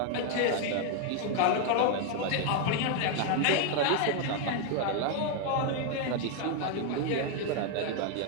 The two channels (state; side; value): different; both; correlation 0.01